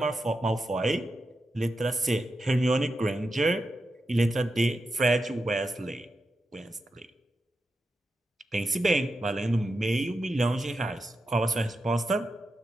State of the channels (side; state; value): both; normal; correlation 0.88